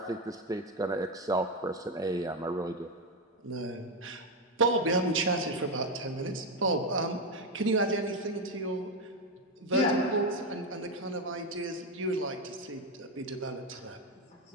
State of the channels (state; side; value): normal; both; correlation 0.09